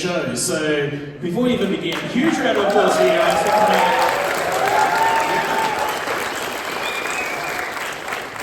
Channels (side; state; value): both; identical; correlation 1.00